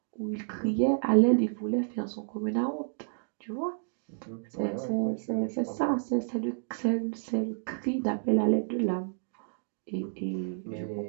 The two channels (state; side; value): silent; left; digital silence